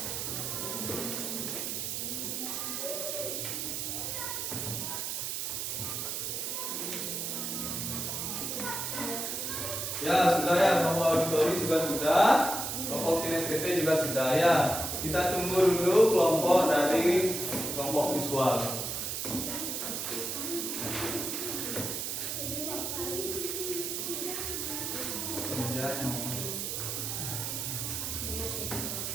Ya, sudah ya, kelompok auditori juga sudah. Kelompok kinestetik juga sudah ya. Kita tunggu dulu kelompok dari kelompok visual.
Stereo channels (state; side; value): noise; right; hiss, 3 dB below the sound